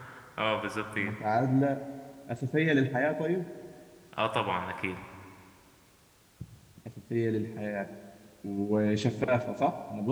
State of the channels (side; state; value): both; identical; correlation 1.00